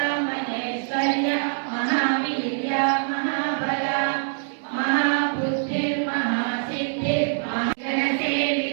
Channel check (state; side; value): silent; left; digital silence